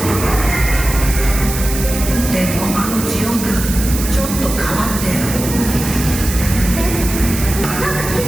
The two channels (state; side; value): noise; right; hiss, 7 dB below the sound